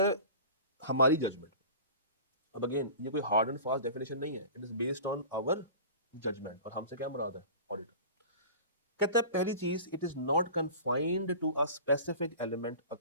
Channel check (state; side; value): inverted; both; correlation -0.38